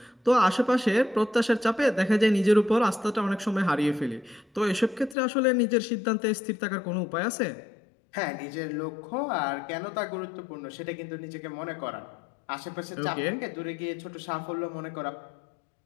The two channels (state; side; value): drops out; right; at 5.2 s